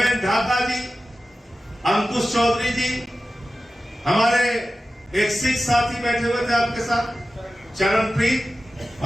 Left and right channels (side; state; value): both; normal; correlation 0.94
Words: ढाका जी, अंकुश चौधरी जी, हमारे एक सिख साथी बैठे हुए थे आपके साथ, चरणप्रीत,